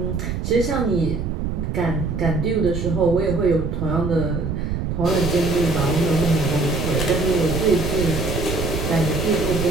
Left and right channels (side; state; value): right; noise; rumble, 3 dB below the sound